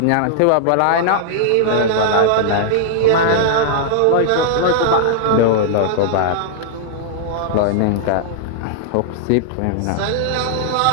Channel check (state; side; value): different; both; correlation -0.01